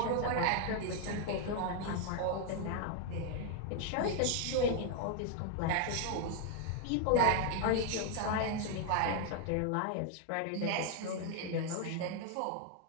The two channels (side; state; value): both; different; correlation 0.00